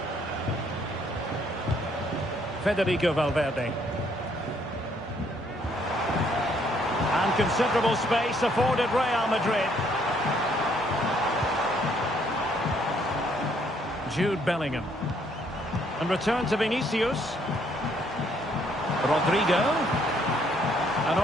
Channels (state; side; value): normal; both; correlation 0.67